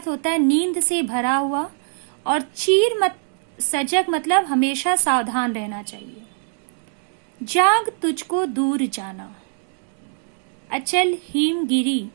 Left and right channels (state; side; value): silent; left; 64 dB below the other